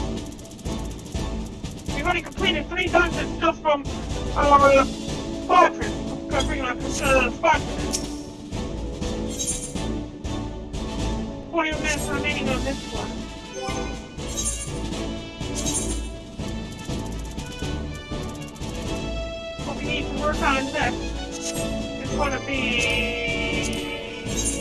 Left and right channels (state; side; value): identical; both; correlation 1.00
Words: We've already completed 3 dungeons just from our squadron. Covering our squadron. 40 minutes remaining on this one. What we need to work on next is going to be